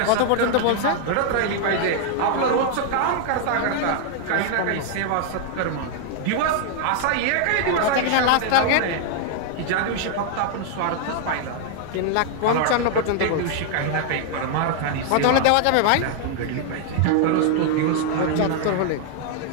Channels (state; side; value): different; both; correlation 0.00